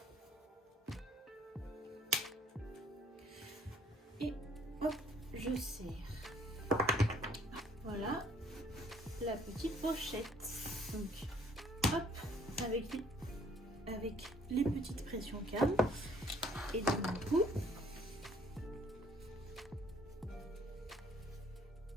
Et hop, je serre. Voilà la petite pochette. Donc hop, avec les petites pressions cam. Et donc du coup,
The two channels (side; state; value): both; normal; correlation 0.61